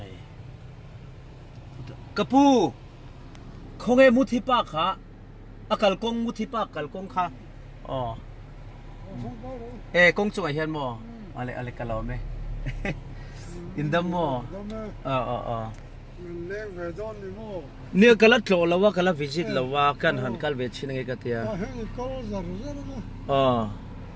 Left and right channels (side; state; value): both; identical; correlation 1.00